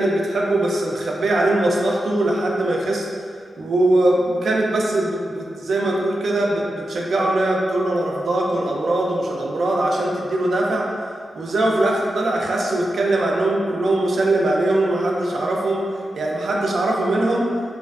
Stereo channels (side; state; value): both; normal; correlation 0.89